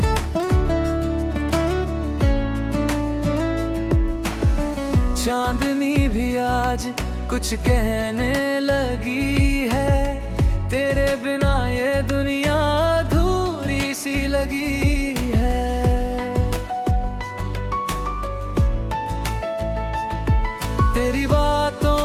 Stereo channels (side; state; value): both; identical; correlation 1.00